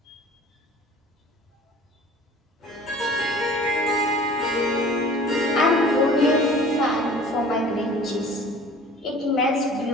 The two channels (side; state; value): both; normal; correlation 0.46